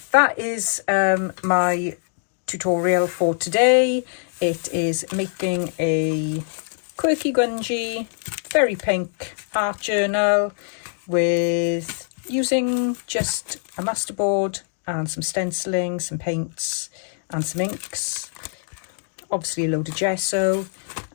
that is my tutorial for today. It is making a quirky grungy, very pink art journal with using just a masterboard and some stenciling, some paints and some inks, obviously a load of gesso,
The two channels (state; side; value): silent; right; 63 dB below the other